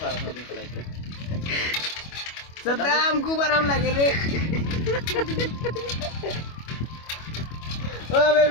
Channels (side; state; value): right; late; 25 ms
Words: সারা সারা দিন চালাইতে सदा हमको आराम लगे रे ओ